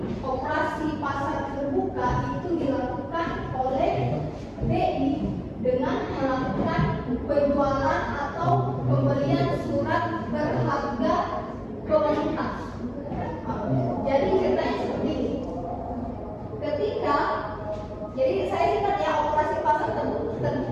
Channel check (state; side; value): identical; both; correlation 1.00